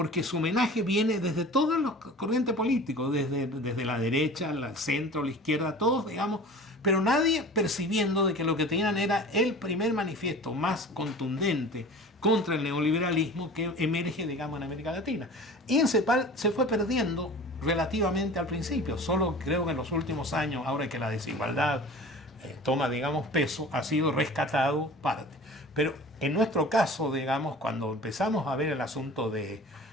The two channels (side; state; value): both; normal; correlation 0.40